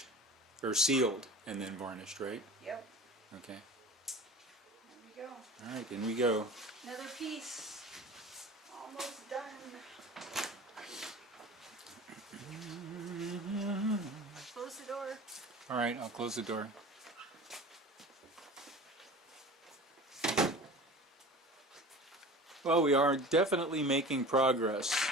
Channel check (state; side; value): normal; both; correlation 0.38